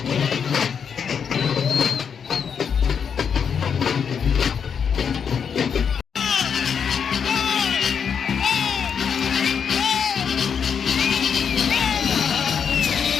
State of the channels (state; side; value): quieter; right; 7.0 dB